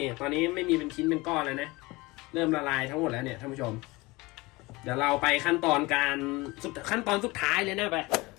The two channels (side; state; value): right; quieter; 22.7 dB